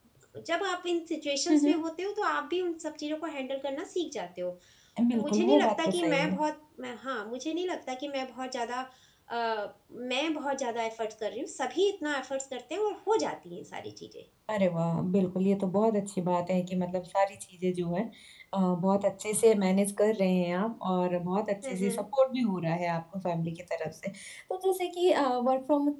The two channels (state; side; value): identical; both; correlation 1.00